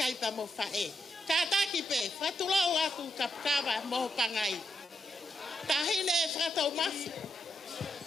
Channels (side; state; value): both; normal; correlation 0.82